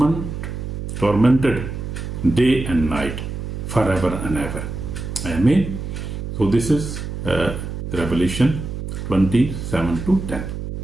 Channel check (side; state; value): right; noise; hum, 6 dB below the sound